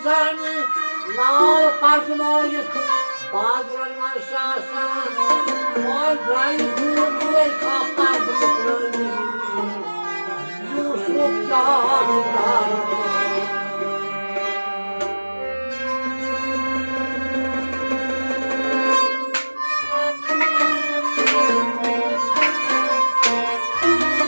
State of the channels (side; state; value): both; inverted; correlation -1.00